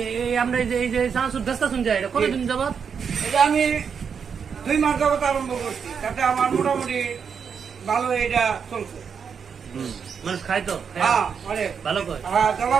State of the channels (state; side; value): quieter; left; 6.6 dB